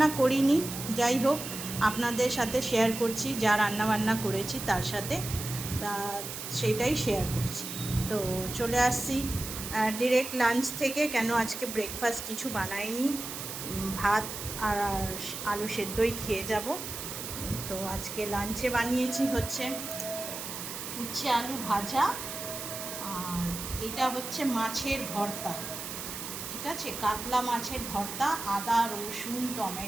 করিনি, যাই হোক আপনাদের সাথে শেয়ার করছি, যা রান্নাবান্না করেছি তার সাথে সেটাই শেয়ার করছি। তো চলে আসছি ডিরেক্ট লাঞ্চ থেকে, কেন আজকে ব্রেকফাস্ট কিছু বানাইনি, ভাত আর আলু সেদ্ধই খেয়ে যাব। তো আজকে লাঞ্চে বানিয়েছি হচ্ছে উচ্ছে আলু ভাজা, আর এটা হচ্ছে মাছের ভর্তা। ঠিক আছে, কাতলা মাছের ভর্তা, আদা রসুন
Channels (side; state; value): right; noise; hiss, 7 dB below the sound